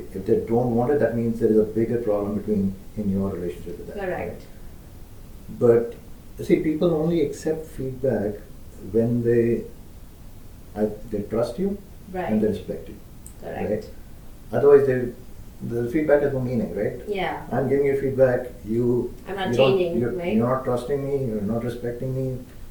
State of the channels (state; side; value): identical; both; correlation 1.00